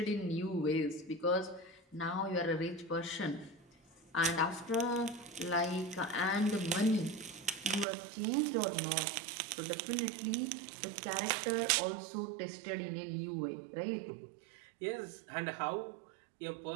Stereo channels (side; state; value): left; drops out; at 7.9 s